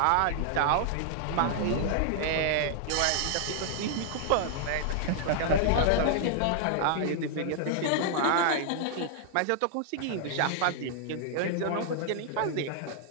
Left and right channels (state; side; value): different; both; correlation -0.01